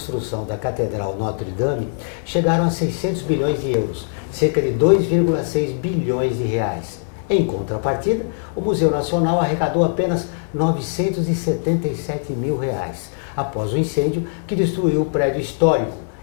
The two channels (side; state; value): right; silent; 60 dB below the other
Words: da Catedral Notre-Dame chegaram a 600 bilhões de euros, cerca de 2,6 bilhões de reais. Em contrapartida, o Museu Nacional arrecadou apenas 977 mil reais, após o incêndio que destruiu o prédio histórico